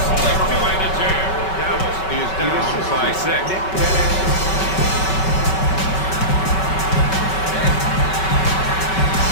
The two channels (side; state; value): right; late; 5.3 ms